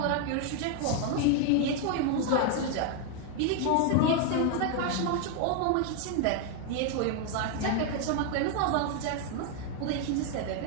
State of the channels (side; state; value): both; different; correlation 0.00